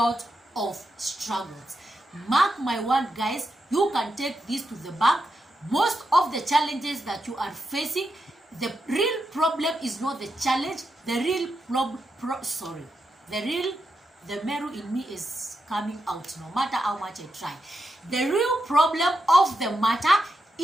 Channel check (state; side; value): normal; both; correlation 0.86